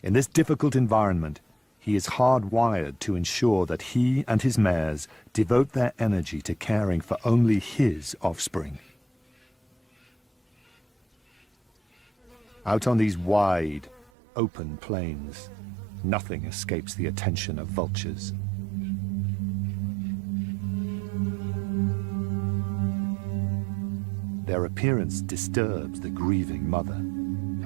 In this difficult environment, he is hardwired to ensure that he and his mares devote their energy to caring for only his offspring. Out on these wide, open plains, nothing escapes the attention of vultures. Their appearance disturbs the grieving mother.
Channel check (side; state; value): left; drops out; at 14.1 s